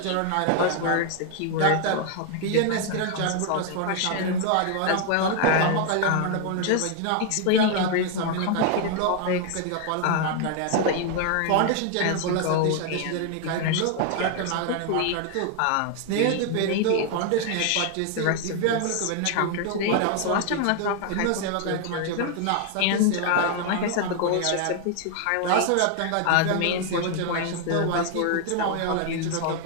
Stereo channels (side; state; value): both; different; correlation 0.00